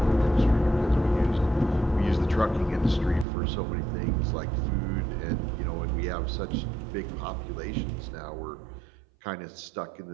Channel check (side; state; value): left; drops out; at 3.2 s